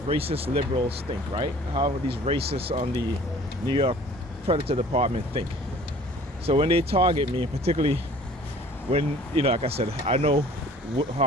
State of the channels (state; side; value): normal; both; correlation 0.50